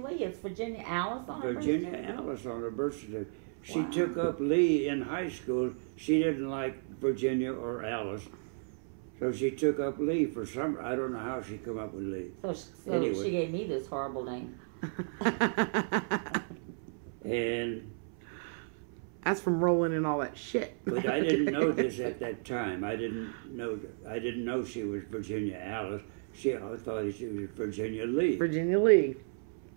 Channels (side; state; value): left; silent; 56 dB below the other